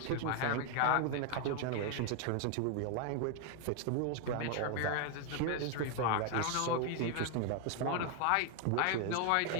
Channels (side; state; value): both; different; correlation 0.01